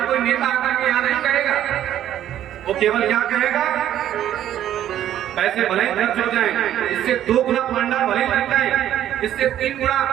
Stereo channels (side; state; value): left; quieter; 11.5 dB